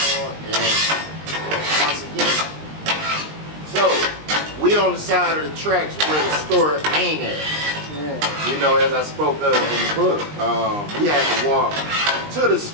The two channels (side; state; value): left; late; 20 ms